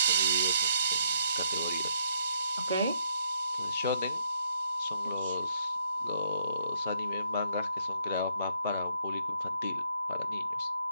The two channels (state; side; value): inverted; both; correlation -0.71